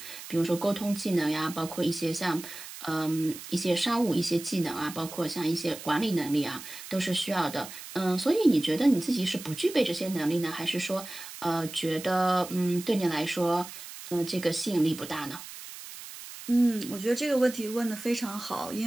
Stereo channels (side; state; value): right; noise; hiss, 13 dB below the sound